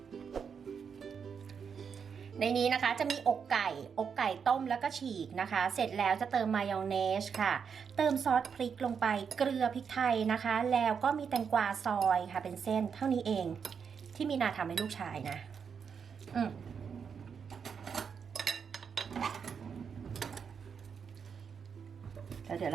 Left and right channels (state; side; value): quieter; left; 6.6 dB